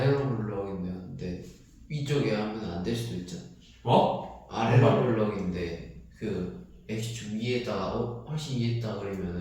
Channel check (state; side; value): identical; both; correlation 1.00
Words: 볼록인데 위쪽에 하면 안 될 수도 있잖아. 뭐? 아래로 볼록인데 그 x축 위에다가 훨씬 위에다가